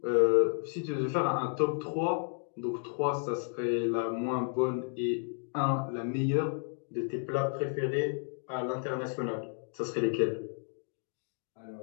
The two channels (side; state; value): right; silent; 56 dB below the other